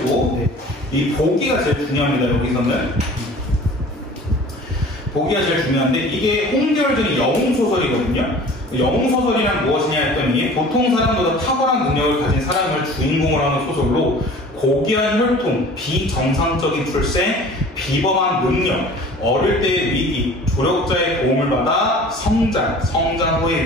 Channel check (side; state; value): both; normal; correlation 0.45